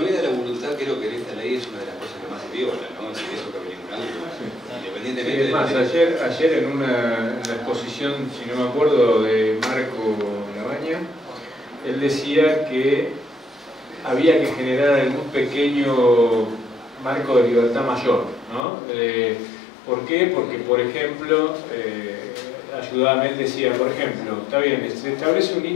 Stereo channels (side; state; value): right; drops out; at 18.7 s